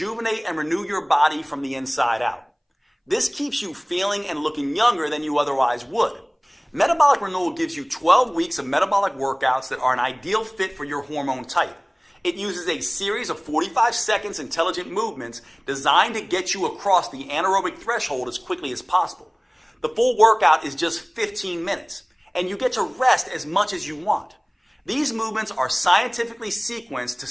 and renew your body from the inside out. This keeps you feeling and looking younger than you otherwise would. Metabolic Renewal gives you 12 weeks of metabolic workouts that are an ideal fit for your hormone type. It uses a series of 45 seconds intelligent movements designed to get you across the anaerobic threshold as quickly as possible. The full workout is just 15 minutes, and you get to rest as much as you want. These movements are scientifically sequenced to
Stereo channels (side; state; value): both; identical; correlation 1.00